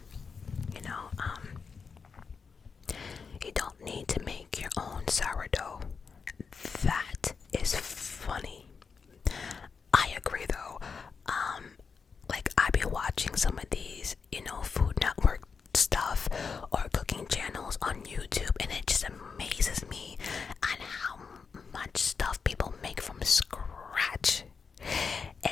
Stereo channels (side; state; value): right; quieter; 5.5 dB